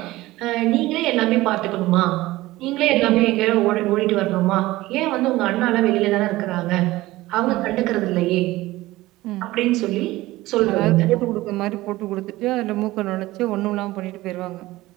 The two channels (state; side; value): quieter; left; 18.1 dB